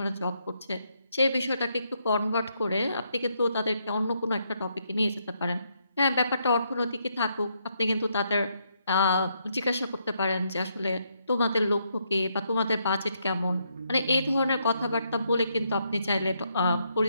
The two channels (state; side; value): inverted; both; correlation -0.76